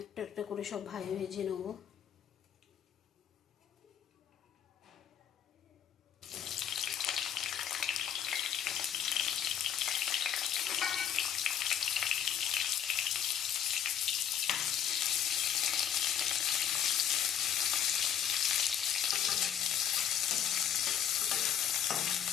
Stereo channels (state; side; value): quieter; right; 9.4 dB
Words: একটা একটা করে সব ভেজে নেবো।